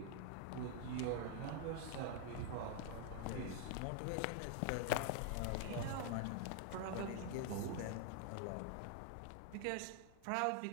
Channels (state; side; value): different; both; correlation 0.00